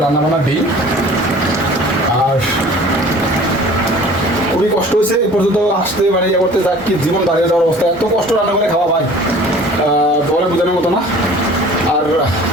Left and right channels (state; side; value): normal; both; correlation 0.47